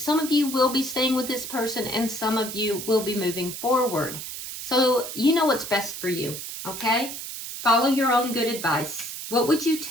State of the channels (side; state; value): right; noise; hiss, 8 dB below the sound